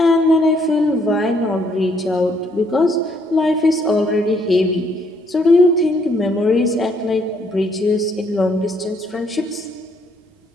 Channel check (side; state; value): both; normal; correlation 0.68